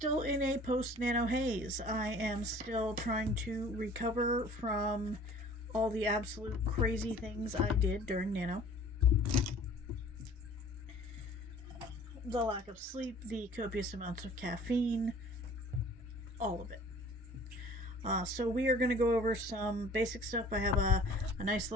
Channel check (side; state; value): both; normal; correlation 0.49